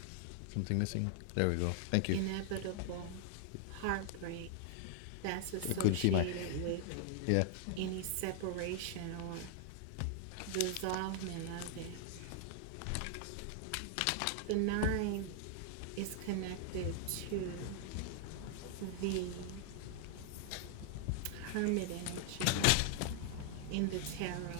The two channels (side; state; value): both; different; correlation 0.00